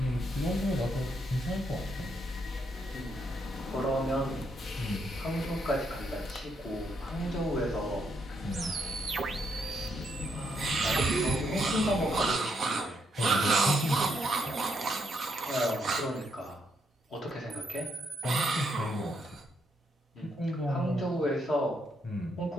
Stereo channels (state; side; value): normal; both; correlation 0.76